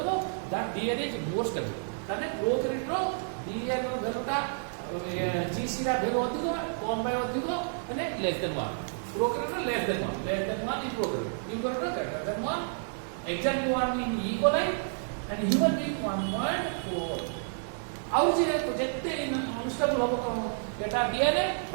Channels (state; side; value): silent; left; digital silence